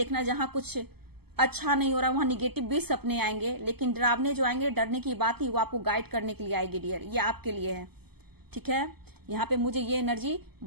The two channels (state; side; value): late; left; 0.96 ms